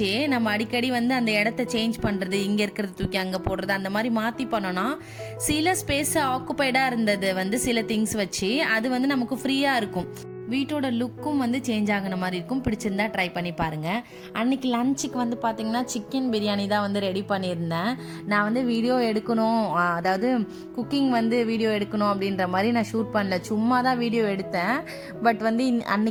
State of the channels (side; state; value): both; identical; correlation 1.00